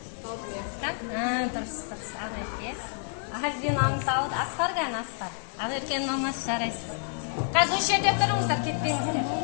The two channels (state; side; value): silent; right; 59 dB below the other